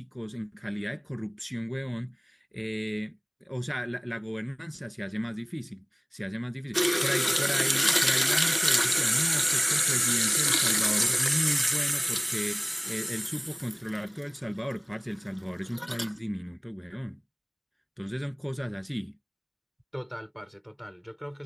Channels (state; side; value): identical; both; correlation 1.00